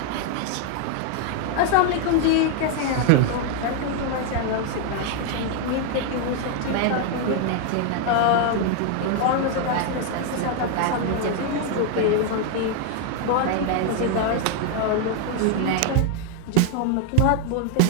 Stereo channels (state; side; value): different; both; correlation 0.01